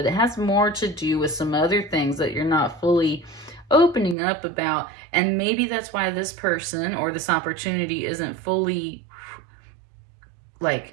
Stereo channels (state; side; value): drops out; left; at 4.2 s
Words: it has more to do with some other things that you're not fully opening up about. And maybe that's why this person or this opportunity isn't fully, like,